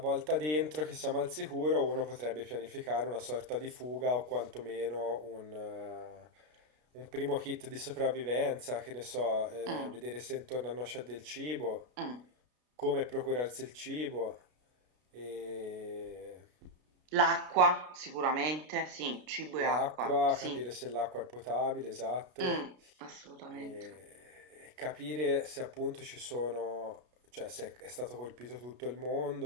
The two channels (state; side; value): late; left; 33 ms